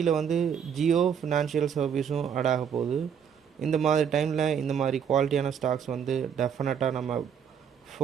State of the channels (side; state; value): left; quieter; 7.8 dB